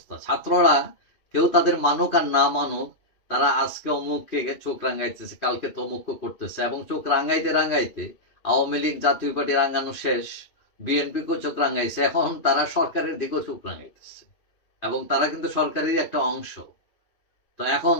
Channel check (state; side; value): late; right; 2.7 ms